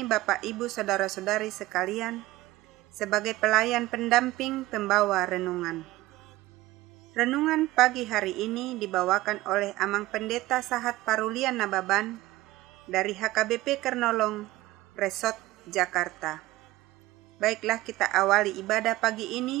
Bapak Ibu Saudara-saudari sekalian sebagai pelayan pendamping pembawa renungan. Renungan pagi hari ini dibawakan oleh Amang Pendeta Sahat Parulian Nababan dari HKBP Kernolong, Resort Jakarta. Baiklah, kita awali ibadah pagi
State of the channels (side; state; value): left; quieter; 17.7 dB